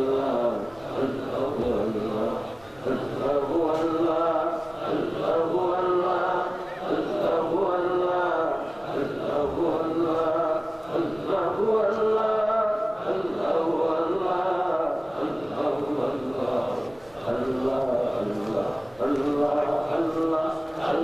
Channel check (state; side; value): noise; right; rumble, 27 dB below the sound